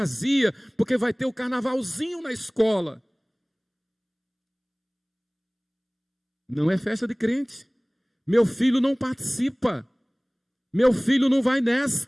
Porque vai ter o carnavalzinho na escola. Não é festa de crente. Meu filho não participa. Meu filho não vai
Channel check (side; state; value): both; identical; correlation 1.00